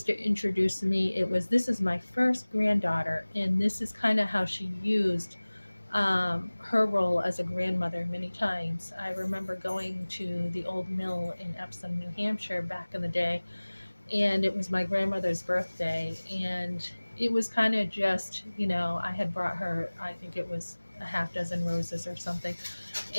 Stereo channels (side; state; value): both; inverted; correlation -1.00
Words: to introduce me, this is my first granddaughter. And this is kind of how she used her role as a grandmother many times. I remember going to the old mill in Epsom, New Hampshire back in the day, and it was my grandmother's birthday, and it was kind of just, I had brought her, I think it was a half dozen roses or something,